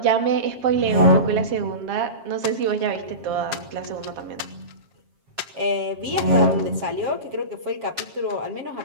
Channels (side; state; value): left; late; 7.4 ms